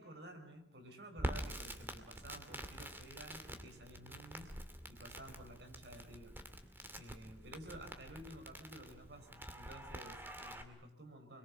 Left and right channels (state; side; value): normal; both; correlation 0.62